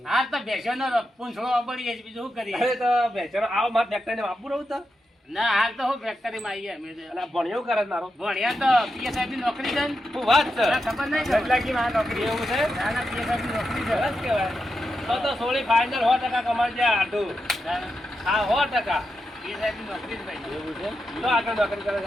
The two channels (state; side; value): normal; both; correlation 0.87